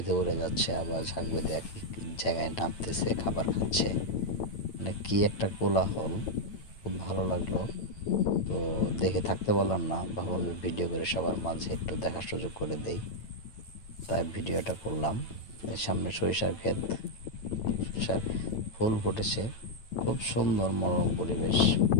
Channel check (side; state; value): right; late; 9.0 ms